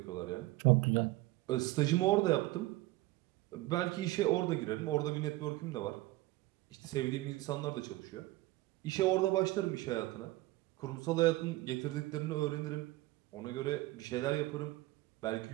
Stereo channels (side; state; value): left; quieter; 18.9 dB